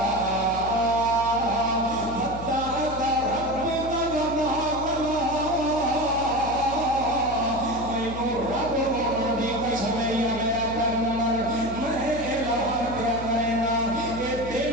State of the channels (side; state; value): left; noise; hum, 11 dB below the sound